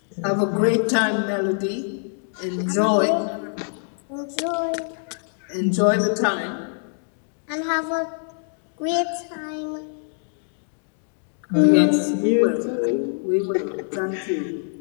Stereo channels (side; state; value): right; silent; digital silence